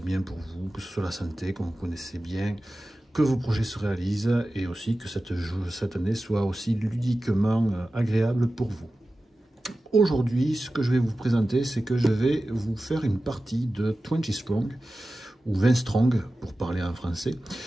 bien pour vous, que ce soit la santé, que vous connaissez bien, que vos projets se réalisent et aussi que cette année soit aussi ludiquement agréable pour vous. Aujourd'hui, ce que je vais vous présenter, c'est que je vais vous faire une partie de 20 Strong, ou 20 Strong pour parler en français,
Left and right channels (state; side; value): normal; both; correlation 0.95